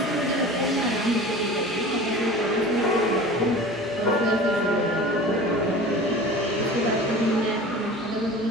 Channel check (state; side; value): normal; both; correlation 0.38